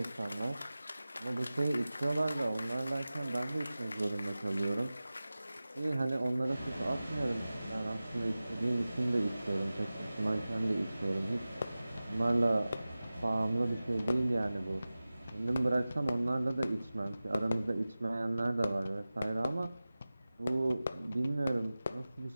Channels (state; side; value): inverted; both; correlation -0.97